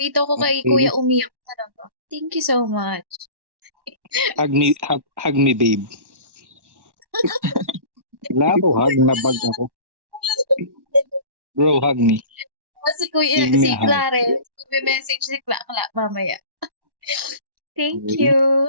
ko kay Okay. kuya umiyak talaga. Thank you so much. Hug me, babe. Wala ako, hug na bag ako. Bro, hug me. Si kuya, Give me si a hug. Clarence, message si Kla mamaya. Thank Okay. you.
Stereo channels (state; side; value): late; left; 1.1 ms